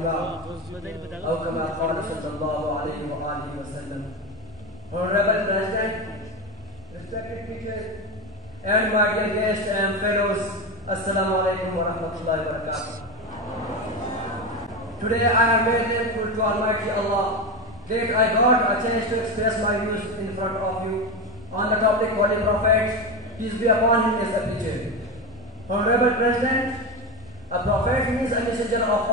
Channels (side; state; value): both; normal; correlation 0.18